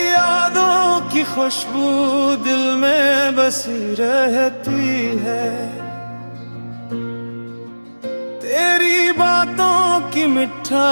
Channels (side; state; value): both; inverted; correlation -1.00